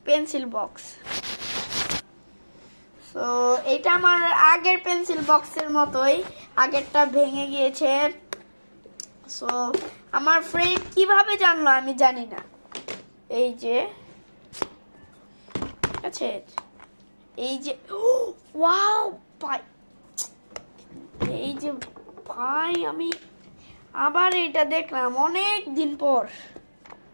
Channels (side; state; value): both; inverted; correlation -1.00